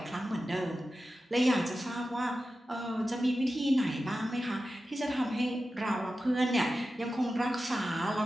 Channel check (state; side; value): normal; both; correlation 0.93